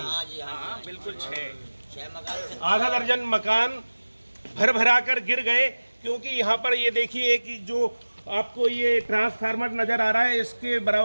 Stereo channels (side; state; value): both; inverted; correlation -1.00